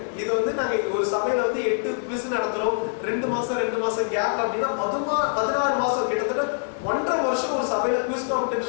இது வந்து நாங்க ஒரு சபையில வந்து 8 குவிஸ் நடத்துறோம். 2 மாசம் கேப் அப்படின்னா 16 மாசம், கிட்டத்தட்ட 1.5 வருஷம் ஒரு சபையில குவிஸ்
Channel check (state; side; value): silent; right; digital silence